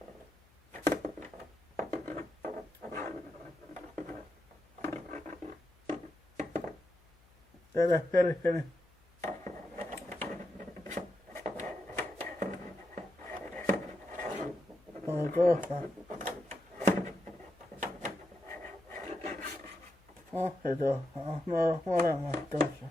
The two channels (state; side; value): noise; left; hum, 29 dB below the sound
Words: Tätä perheeni. On kohta. Se tuossa. No molemmat tuossa.